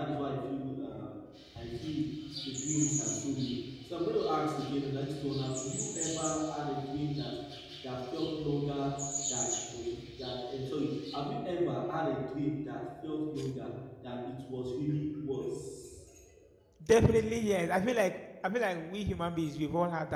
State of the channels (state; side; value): identical; both; correlation 1.00